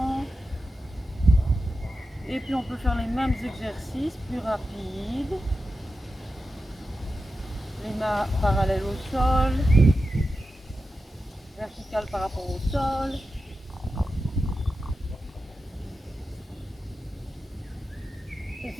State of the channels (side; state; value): both; normal; correlation 0.91